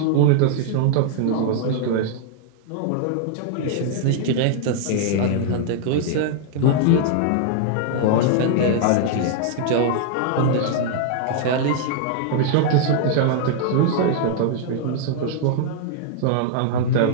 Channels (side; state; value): both; different; correlation -0.01